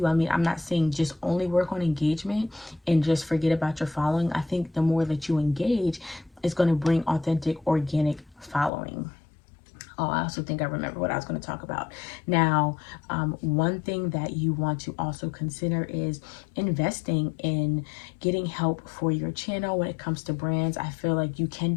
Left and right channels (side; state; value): right; drops out; at 8.7 s